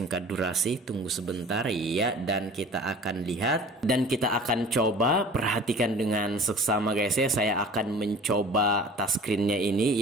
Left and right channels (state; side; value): normal; both; correlation 0.44